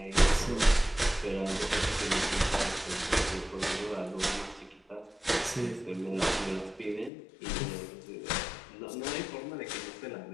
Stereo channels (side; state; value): right; drops out; at 7.1 s